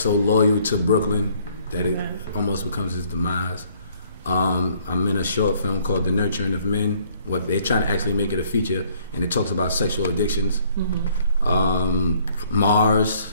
loyal to Brooklyn that it almost becomes his demise. I'm in a short film called The Nurturing of Men. What they're trying to actually make it a feature, and it talks about sexual addictions. Mars.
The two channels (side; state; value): both; inverted; correlation -0.62